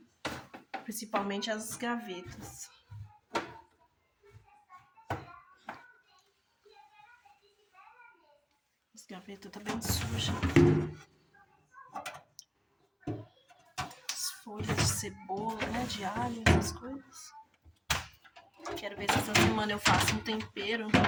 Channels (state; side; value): identical; both; correlation 1.00